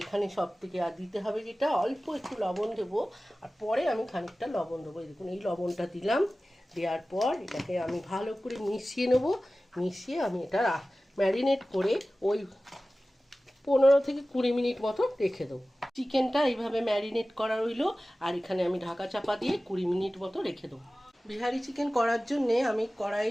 এখানে সব থেকে আর দিতে হবে যেটা, অল্প একটু লবণ দেবো, আর পরে আমি খানিকটা লবণ দেবো। এই দেখুন, এই লবণটা দিলাম। দেওয়ার পর এটাকে আমি ভালো করে মিশিয়ে নেবো। মিশিয়ে আমি এটা ম্যারিনেট করে ওই 15 থেকে 20 মিনিট মতো রেখে দেবো। চিকেনটা এইভাবে ম্যারিনেট করা রইলো, আর এখানে আমি ঢাকা চাপা দিয়ে 20 মিনিট মতো রেখে দেবো। বিহারি চিকেন করার জন্যে আমি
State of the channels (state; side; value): normal; both; correlation 0.96